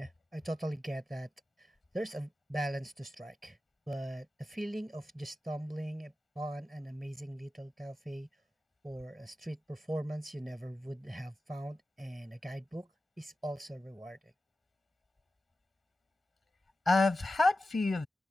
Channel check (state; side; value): normal; both; correlation 0.93